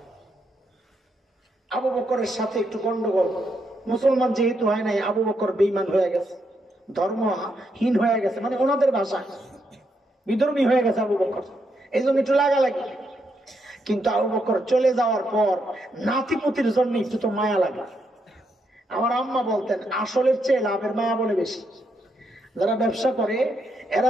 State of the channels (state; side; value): normal; both; correlation 0.79